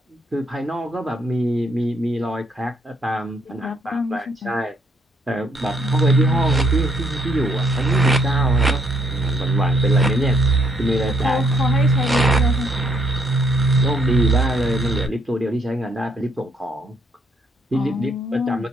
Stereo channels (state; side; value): normal; both; correlation 0.69